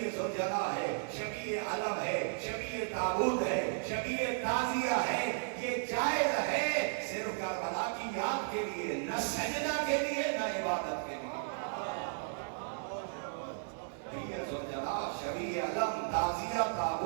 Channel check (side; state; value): left; silent; digital silence